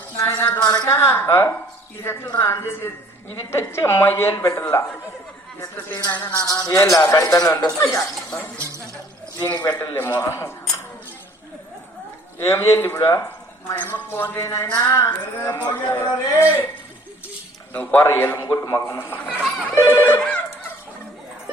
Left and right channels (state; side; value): normal; both; correlation 0.55